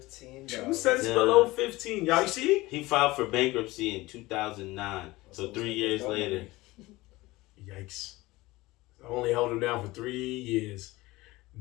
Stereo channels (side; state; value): right; quieter; 20.0 dB